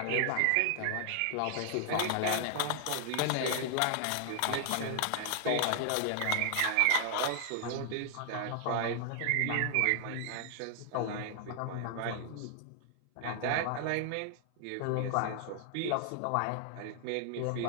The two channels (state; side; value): different; both; correlation 0.00